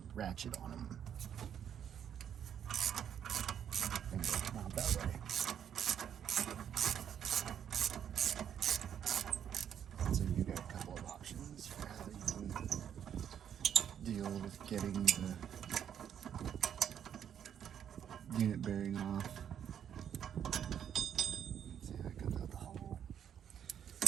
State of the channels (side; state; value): left; quieter; 9.0 dB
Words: ratchet on them. And it'll come out that way. So you got a couple of options for how you can deal with getting the unit bearing off. See how it comes out the hole.